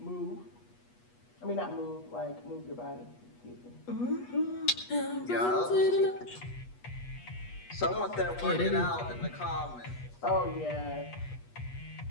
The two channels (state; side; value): late; right; 8.3 ms